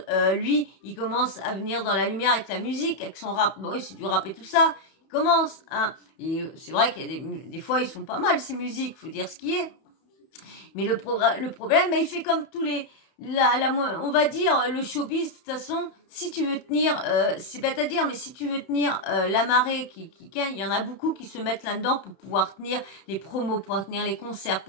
Lui, il commence à venir dans la lumière avec la musique, avec son rap. Bon, oui, c'est du rap et tout ça. Il commence. Hein. Et c'est vrai qu'il y a des fois, ils sont pas mal, ces musiques. Faut dire ce qui est. Mais le problème, il fait comme tous les... on va dire, le showbiz, de toute façon, si tu veux tenir, c'est bête à dire, mais si tu veux tenir la marée, il y en a beaucoup qui se mettent là-dedans pour pouvoir tenir les promos, pour pouvoir tenir les concerts, pour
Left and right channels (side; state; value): right; late; 31 ms